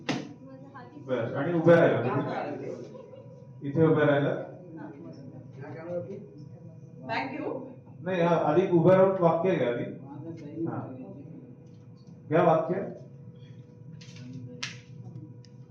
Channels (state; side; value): identical; both; correlation 1.00